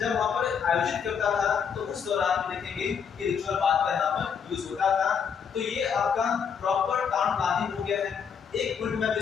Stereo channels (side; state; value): right; quieter; 6.9 dB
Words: वहां पर आयोजित करता था, तो उस दौरान देखेंगे कि रिचुअल बात का यहाँ पर यूज होता था। तो ये आपका प्रॉपर टाउन प्लानिंग हो गया है। एक पॉइंट में